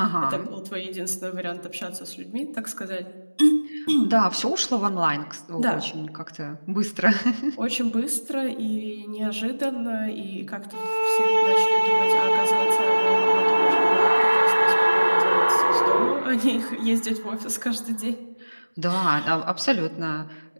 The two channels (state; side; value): inverted; both; correlation -1.00